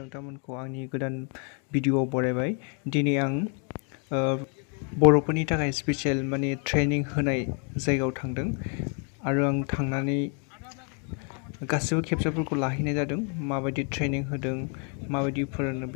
आंनि गोदान भिडिअ'आव बरायबाय। दिनै आं बर'फोरनि थाखाय स्पेसियेल माने ट्रेनिं होनाय जायगायाव थांदों आरो आं थांनानै गासिबो केपचारफोरखौ लाहैनाय जादों। माबायदि ट्रेनिं होदों, माबायदि फोरोंदों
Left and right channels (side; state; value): right; quieter; 39.9 dB